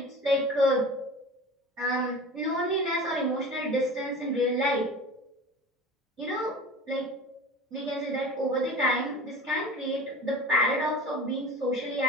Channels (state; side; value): normal; both; correlation 0.36